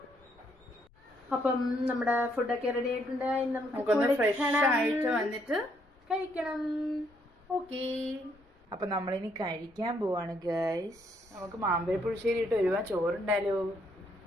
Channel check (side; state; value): left; noise; rumble, 29 dB below the sound